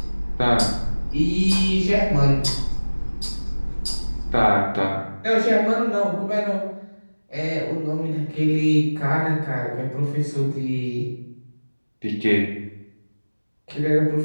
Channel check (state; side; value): inverted; both; correlation -1.00